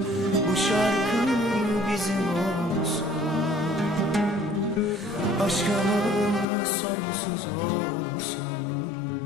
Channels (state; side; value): drops out; right; at 6.5 s